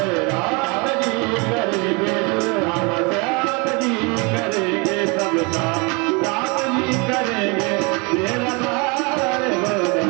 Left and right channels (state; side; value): quieter; left; 29.4 dB